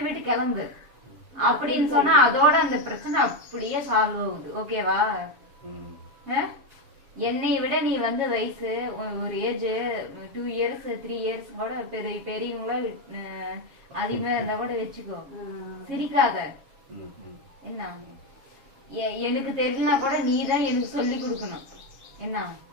விட்டு கிளம்பு அப்படின்னு சொன்னா அதோட அந்த பிரச்சனை அப்படியே சால்வ் ஆகுது. ஓகேவா? என்னை விட நீ வந்து வயசு ஒரு ஏஜ் 2 years 3 years கூட பெரியவங்கள அதிகமா இருந்தா கூட வச்சுக்கோ. சிரிக்காத. என்ன, எனக்கு தெரியலனா கூட நீதான் எனக்கு சொல்லி கொடுக்கணும்.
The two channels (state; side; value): late; left; 7.3 ms